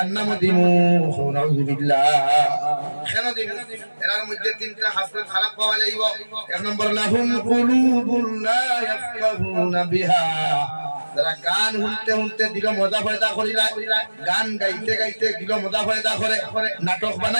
দিমু নাউযুবিল্লাহ কেন দিমু এর মধ্যে তিনটা হাসরত খারাপ পাওয়া যাইব এক নম্বর লাহুম কুলুবুন লা ইয়াফকাহুনা বিহা যারা গান শুনতে শুনতে দিল মজা ফায়দা করিলা গান গাইতে গাইতে দিল মজা ফায়দা করে নাটক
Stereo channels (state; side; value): inverted; both; correlation -1.00